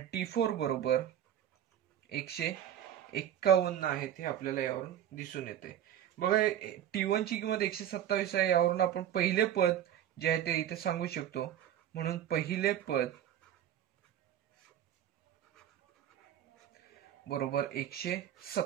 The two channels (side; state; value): left; quieter; 10.6 dB